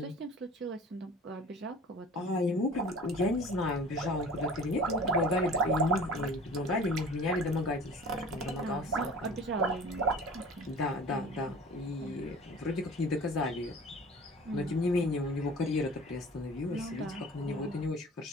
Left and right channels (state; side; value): normal; both; correlation 0.43